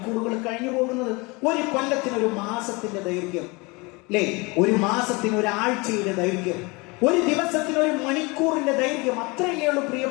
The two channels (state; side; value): quieter; right; 26.6 dB